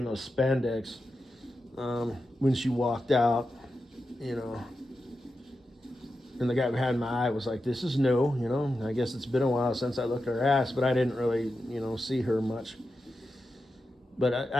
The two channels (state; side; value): normal; both; correlation 0.90